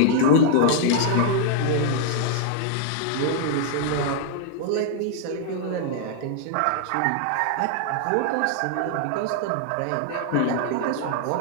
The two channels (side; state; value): both; different; correlation -0.01